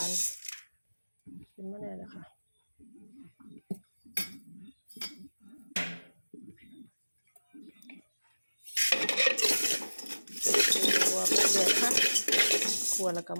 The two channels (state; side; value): inverted; both; correlation -1.00